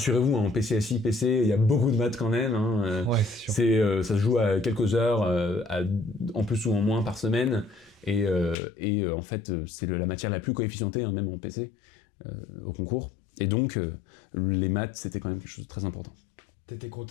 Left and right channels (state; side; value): drops out; right; at 8.6 s